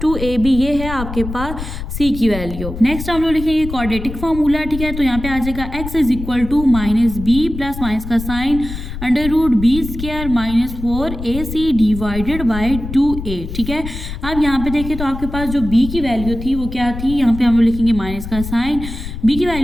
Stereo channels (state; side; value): noise; left; rumble, 8 dB below the sound